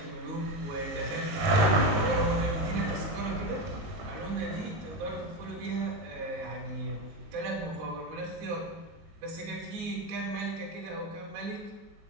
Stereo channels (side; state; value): left; late; 19 ms